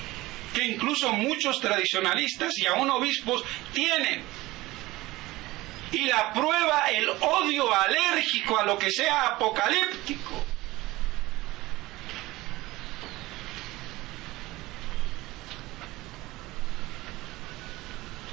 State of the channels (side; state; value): left; quieter; 19.1 dB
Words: que incluso muchos tradicionalistas y aún obispos tienen. Y la prueba, el odio alérgico a lo que sea apocalíptico.